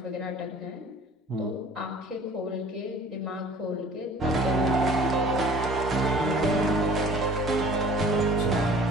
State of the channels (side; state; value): both; normal; correlation 0.49